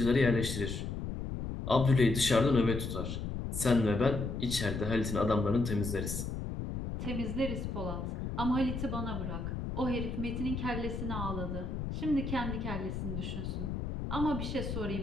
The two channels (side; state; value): left; noise; rumble, 4 dB below the sound